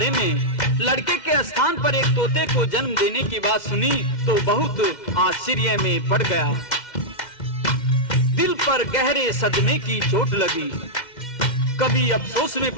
में लड़के के स्थान पर एक तोते को जन्म देने की बात सुनी तो बहुत आश्चर्य में पड़ गया। दिल पर गहरे सदमे की चोट लगी, कभी अफसोस में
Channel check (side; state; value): right; late; 2.0 ms